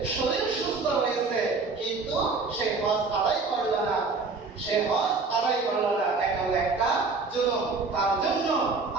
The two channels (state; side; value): quieter; left; 4.2 dB